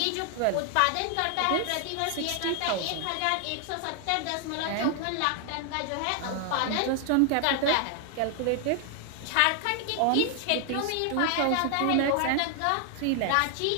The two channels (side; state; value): both; different; correlation 0.00